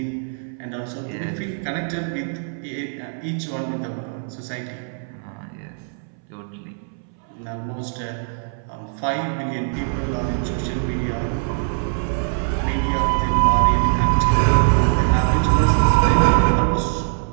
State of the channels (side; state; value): left; silent; 64 dB below the other